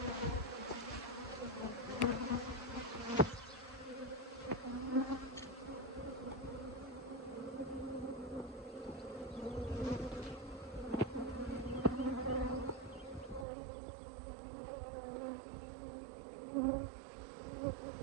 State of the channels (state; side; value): drops out; left; at 13.5 s